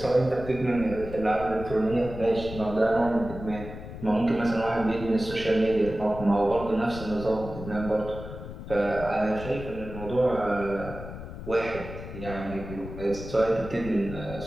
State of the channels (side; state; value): left; noise; rumble, 11 dB below the sound